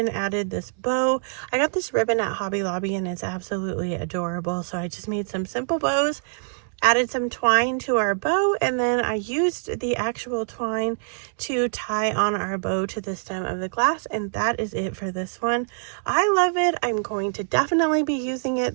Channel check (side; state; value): left; silent; 62 dB below the other